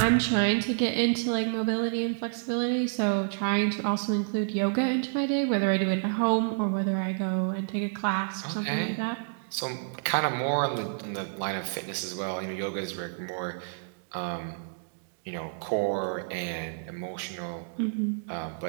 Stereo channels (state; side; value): silent; left; digital silence